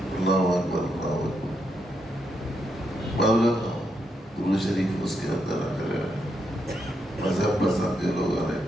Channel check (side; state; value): both; normal; correlation 0.80